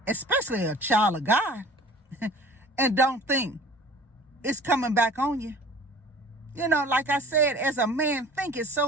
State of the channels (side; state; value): both; normal; correlation 0.46